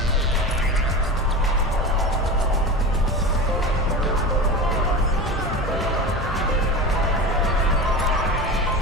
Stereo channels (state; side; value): normal; both; correlation 0.27